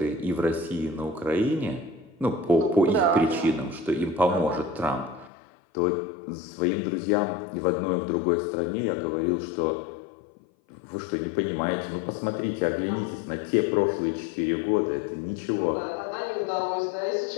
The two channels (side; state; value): right; drops out; at 5.3 s